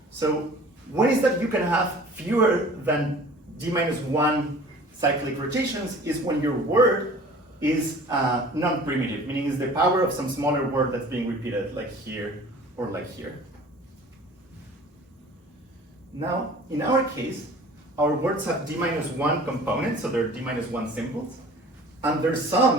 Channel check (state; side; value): normal; both; correlation 0.46